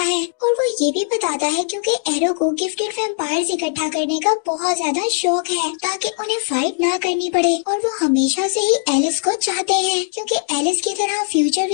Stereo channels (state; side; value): silent; right; digital silence